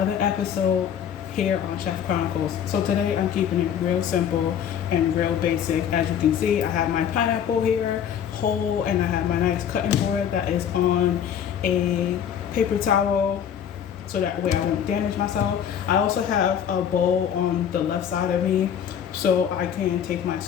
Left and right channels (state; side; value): quieter; right; 8.9 dB